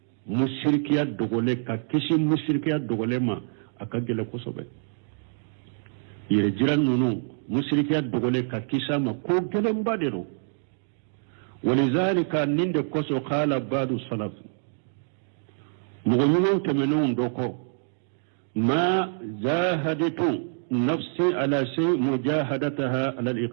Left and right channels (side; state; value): left; silent; digital silence